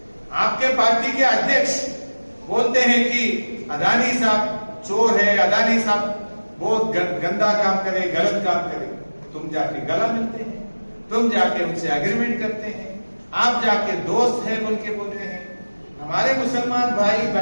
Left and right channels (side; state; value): both; inverted; correlation -1.00